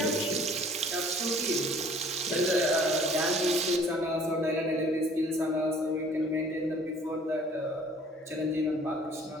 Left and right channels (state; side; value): normal; both; correlation 0.53